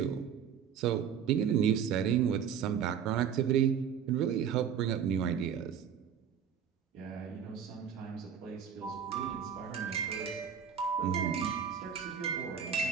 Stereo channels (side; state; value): left; quieter; 8.0 dB